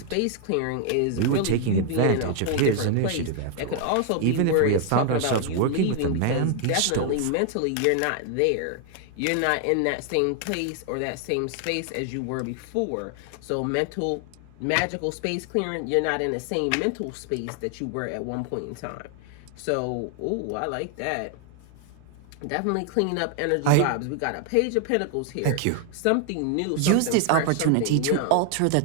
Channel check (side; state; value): both; different; correlation 0.00